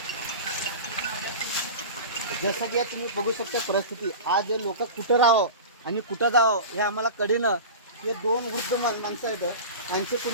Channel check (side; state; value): both; inverted; correlation -0.31